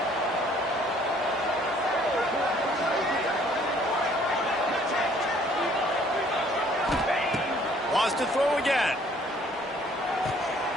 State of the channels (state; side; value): normal; both; correlation 0.59